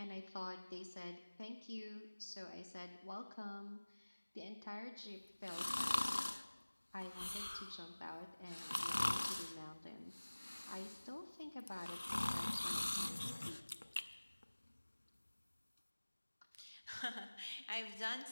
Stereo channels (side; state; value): both; inverted; correlation -1.00